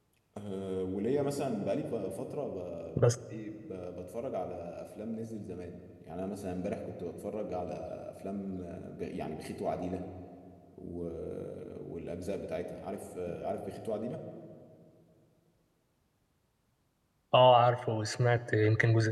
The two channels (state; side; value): identical; both; correlation 1.00